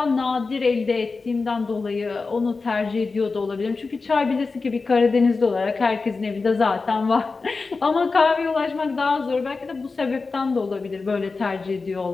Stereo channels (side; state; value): right; quieter; 4.1 dB